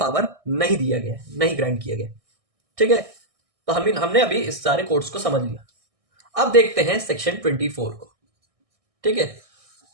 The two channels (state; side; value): late; left; 1.6 ms